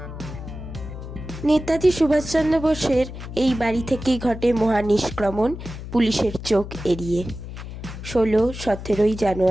নেতাজি সুভাষচন্দ্র বোসের এই বাড়ি থেকেই ঘটে মহানিষ্ক্রমণ পুলিশের চোখ এড়িয়ে 16-17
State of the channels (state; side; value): noise; left; hum, 10 dB below the sound